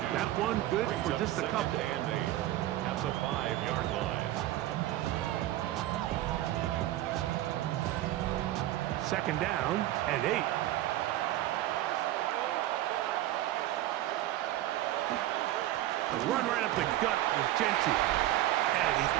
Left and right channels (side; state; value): left; quieter; 14.6 dB